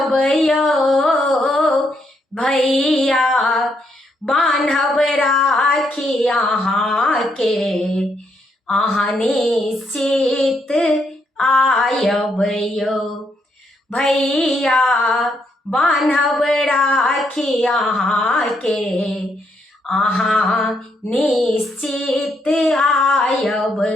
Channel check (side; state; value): both; normal; correlation 0.76